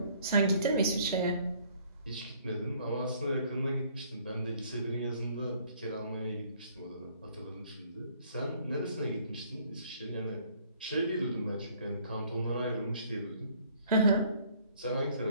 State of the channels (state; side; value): inverted; both; correlation -0.60